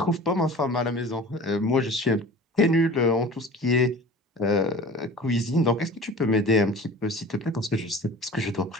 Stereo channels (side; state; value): both; normal; correlation 0.41